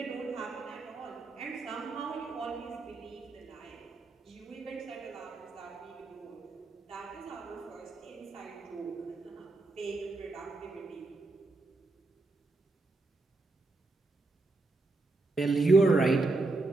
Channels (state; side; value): quieter; left; 3.2 dB